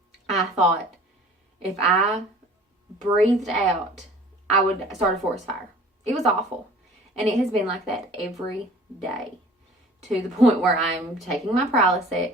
I thought if I breathed out, I would start a forest fire. It was awful. And it has been like that every day, to the point where I'm taking my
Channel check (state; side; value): normal; both; correlation 0.48